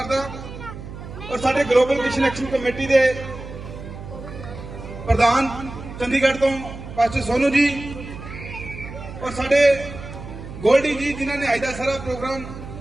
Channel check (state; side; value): noise; right; hum, 12 dB below the sound